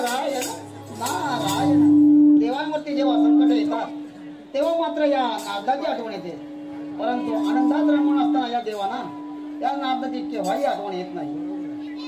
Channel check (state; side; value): identical; both; correlation 1.00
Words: नारायण. देवांवरती जेव्हा संकट येतात तेव्हा मात्र या नारदाची आठवण येते. परंतु आनंदात रमून असताना या देवाना या नारदाची केव्हाही आठवण येत नाही.